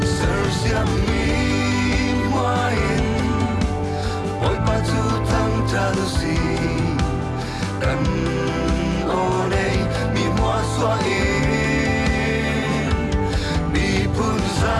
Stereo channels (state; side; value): identical; both; correlation 1.00